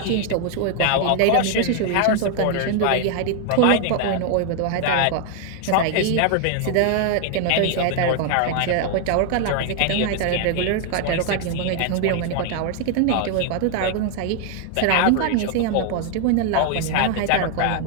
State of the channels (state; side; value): different; both; correlation 0.00